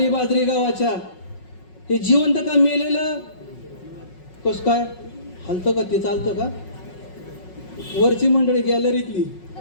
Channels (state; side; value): late; right; 5.4 ms